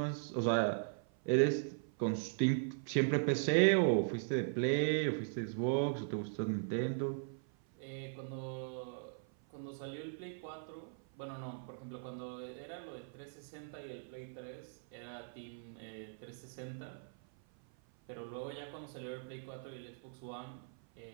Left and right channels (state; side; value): silent; left; 52 dB below the other